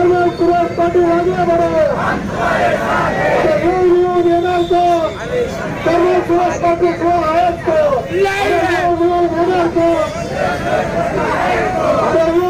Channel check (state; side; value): identical; both; correlation 1.00